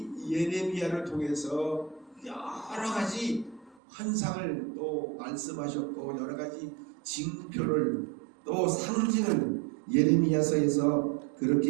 예레미야를 통해서 여러 가지 환상을 또 말씀하셨고 여러 가지 징표를 또 상징을 예레미야서에서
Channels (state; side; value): drops out; left; at 3.8 s